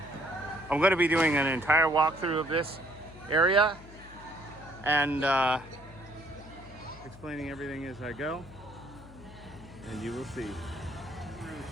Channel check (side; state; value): left; noise; hum, 19 dB below the sound